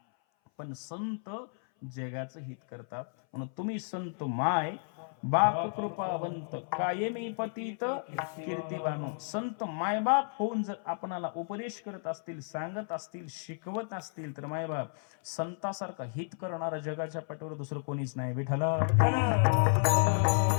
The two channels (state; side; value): silent; right; 56 dB below the other